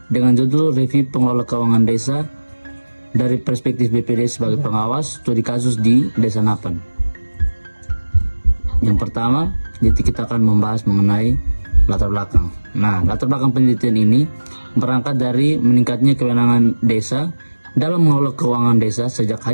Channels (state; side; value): inverted; both; correlation -1.00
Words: dengan judul Review Pengelola Keuangan Desa dari perspektif BPD sebagai pengawas studi kasus di Desa Napan. Yang pertama, kita akan membahas mengenai latar belakang. Nah, latar belakang penelitian ini berangkat dari meningkatnya kewenangan desa dalam mengelola keuangan desa sejak